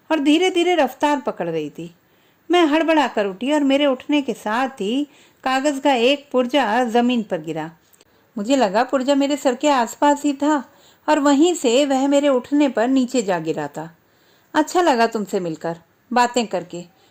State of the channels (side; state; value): both; identical; correlation 1.00